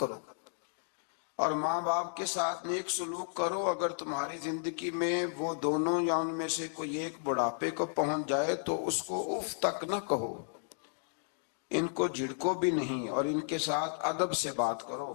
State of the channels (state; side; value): silent; right; digital silence